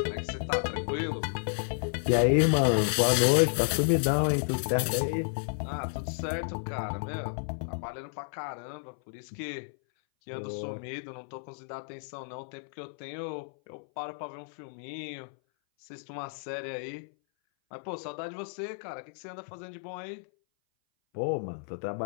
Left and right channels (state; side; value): silent; right; 57 dB below the other